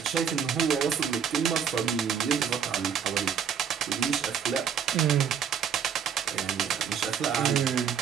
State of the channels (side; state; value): left; quieter; 7.7 dB